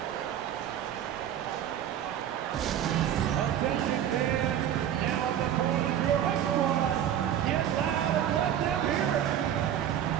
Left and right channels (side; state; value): left; quieter; 10.3 dB